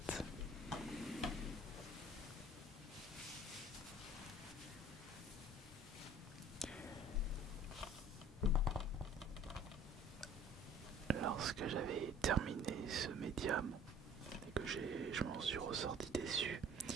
Lorsque j'avais terminé ce médium et que je m'en suis ressorti déçu,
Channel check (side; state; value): both; normal; correlation 0.49